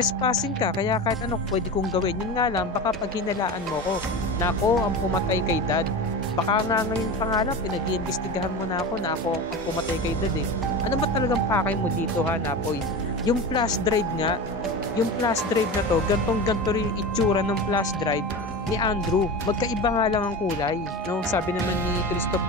ka, kaya kahit ano pwede kong gawin. Yun nga lang, baka pag hinalaan mo ko na ako ang pumatay kay dad. Baka nga ngayon pa nga lang, pinag-iimbestigahan mo na ako na ako ang pumatay kay dad eh. Ano ba talagang pakay mo dito ha, Napoy? Yung flash drive nga, yung flash drive na to, gantong-ganto rin yung itsura ng flash drive ni Andrew. Magkaiba nga lang ang kulay, no? Sabi naman ni Christoph,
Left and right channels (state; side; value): normal; both; correlation 0.27